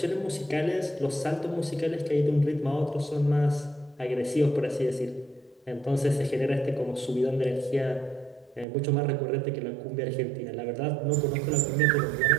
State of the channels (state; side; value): drops out; left; at 8.7 s